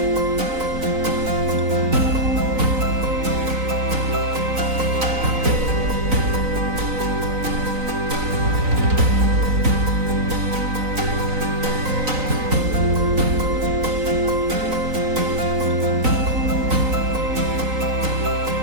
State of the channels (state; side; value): late; left; 3.9 ms